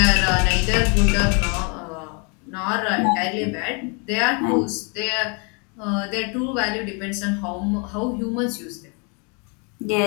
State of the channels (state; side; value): quieter; right; 34.8 dB